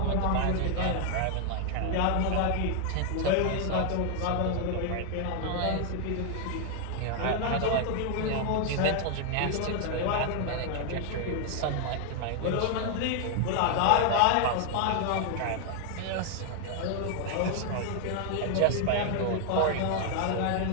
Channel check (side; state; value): both; different; correlation 0.00